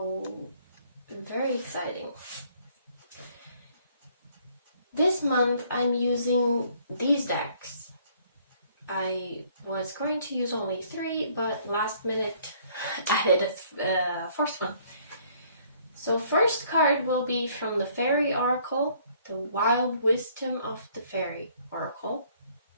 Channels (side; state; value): both; inverted; correlation -0.62